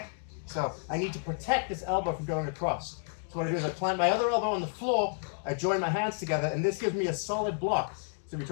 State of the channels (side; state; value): right; silent; 57 dB below the other